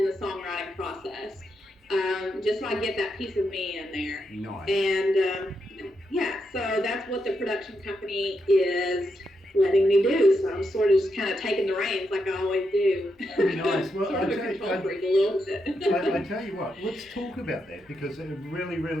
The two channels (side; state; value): both; normal; correlation 0.83